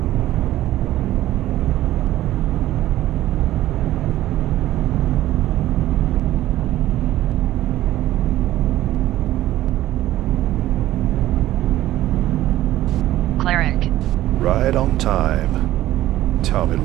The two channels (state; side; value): quieter; left; 14.5 dB